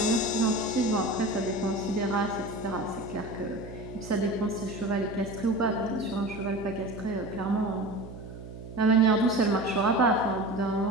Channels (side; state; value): right; noise; hum, 13 dB below the sound